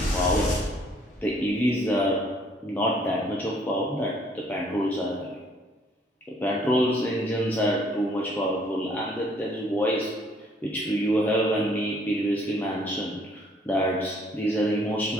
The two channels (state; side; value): normal; both; correlation 0.63